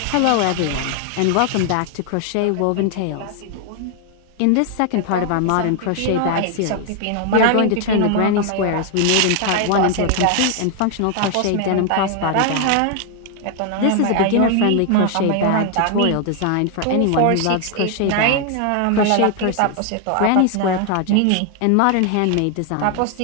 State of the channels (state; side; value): different; both; correlation 0.00